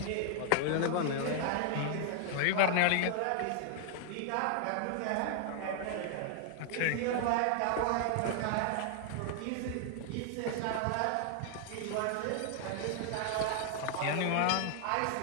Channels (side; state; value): both; different; correlation 0.00